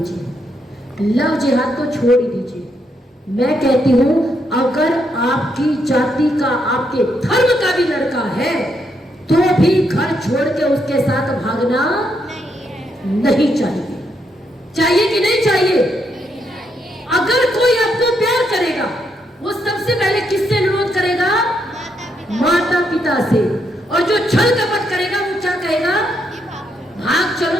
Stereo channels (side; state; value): both; normal; correlation 0.78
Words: लव जिहाद को छोड़ ही दीजिए। मैं कहती हूं अगर आपकी जाति का, आपके धर्म का भी लड़का है तो भी घर छोड़ के उसके साथ भागना नहीं चाहिए। चाहिए कि नहीं चाहिए? अगर कोई आपको प्यार करेगा वो सबसे पहले किससे अनुरोध करेगा? माता पिता से। और जो छल कपट करेगा वो क्या कहेगा? भाग